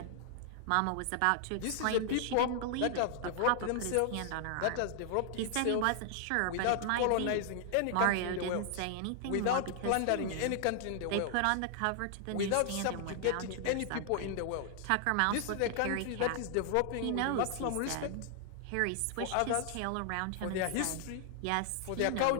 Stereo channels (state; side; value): different; both; correlation 0.00